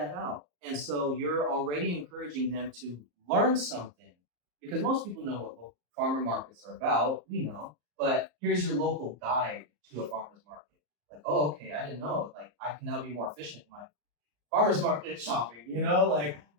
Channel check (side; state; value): left; late; 34 ms